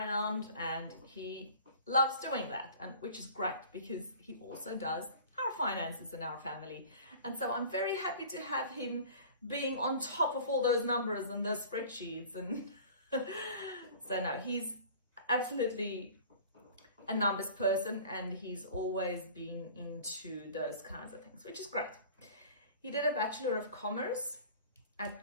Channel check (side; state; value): both; inverted; correlation -0.44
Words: and he loves doing that, and which is great because he also does our finances in our family. And so I'm very happy to have him being on top of all those numbers and those spreadsheets. And so no, he's absolutely a numbers person, and he's always been into those kinds of things, which is great. He did a Bachelor of Commerce